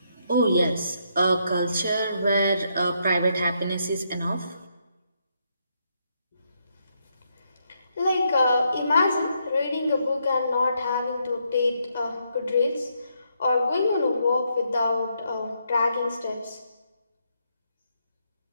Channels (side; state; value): both; inverted; correlation -0.77